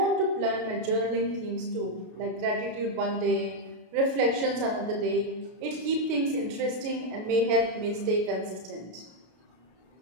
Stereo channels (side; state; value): left; late; 33 ms